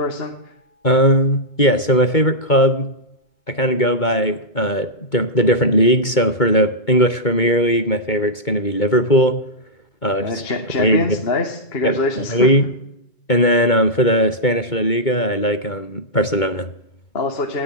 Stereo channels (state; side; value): late; right; 2.2 ms